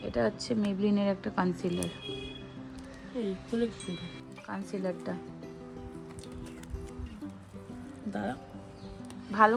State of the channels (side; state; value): both; identical; correlation 1.00